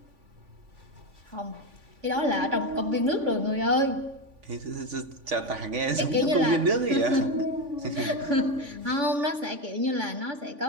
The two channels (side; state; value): left; late; 3.5 ms